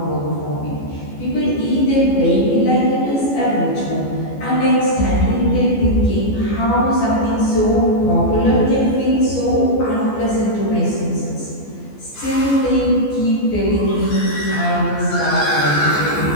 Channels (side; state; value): right; late; 14 ms